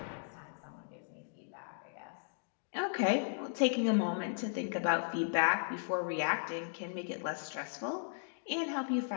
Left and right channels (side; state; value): right; silent; digital silence